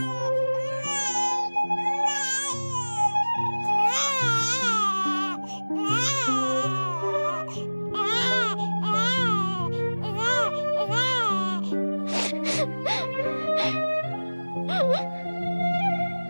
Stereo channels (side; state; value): both; inverted; correlation -1.00